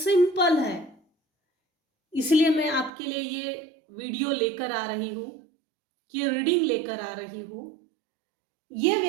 है, इसलिए मैं आपके लिए ये वीडियो लेकर आ रही हूँ, ये रीडिंग लेकर आ रही हूँ। ये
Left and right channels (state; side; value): drops out; left; at 2.9 s